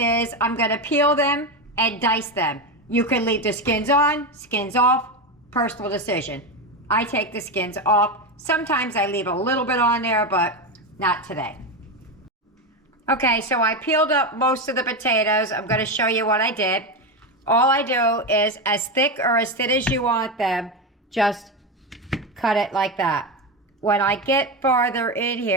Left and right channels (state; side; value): normal; both; correlation 0.14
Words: I'm going to peel them and dice them. You can leave the skins on, skins off, personal decision. I take the skins off. Sometimes I leave a little bit on there, but not today. Okay, so I peeled up most of the potatoes. I'm going to show you what I did. All I do is as thick or as thin as you want them, just cut it like that. When I get farther in